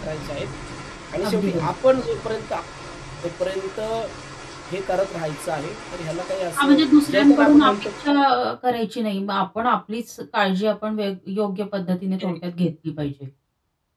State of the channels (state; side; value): identical; both; correlation 1.00